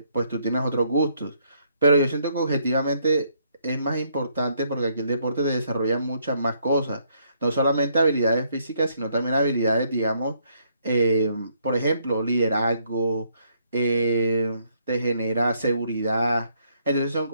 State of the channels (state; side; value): inverted; both; correlation -0.71